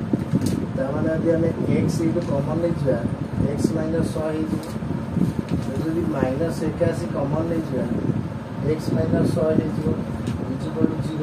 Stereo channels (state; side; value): identical; both; correlation 1.00